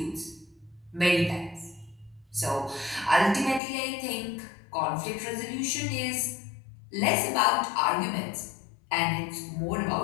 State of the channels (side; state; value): right; drops out; at 3.6 s